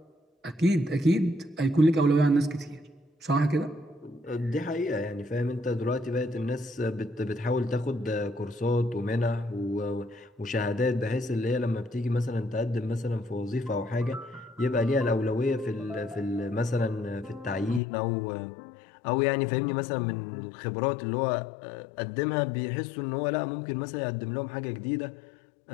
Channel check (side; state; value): right; drops out; at 17.8 s